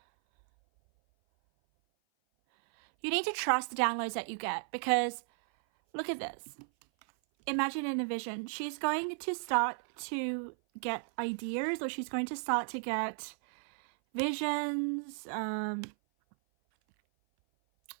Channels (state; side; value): silent; left; 55 dB below the other